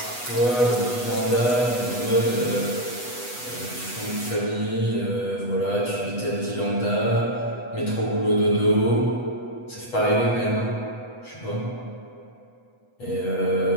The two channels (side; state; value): right; late; 8.1 ms